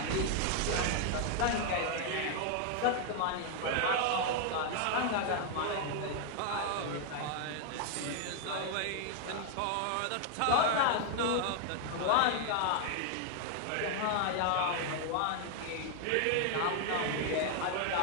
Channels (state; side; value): different; both; correlation 0.00